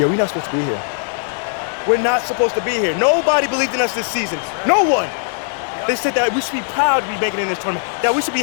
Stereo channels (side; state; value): right; silent; 67 dB below the other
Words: we're not supposed to be here. We're not supposed to be here. Nobody believed in us this season. No one. They said that we should be proud to be making it in this tournament, that we should be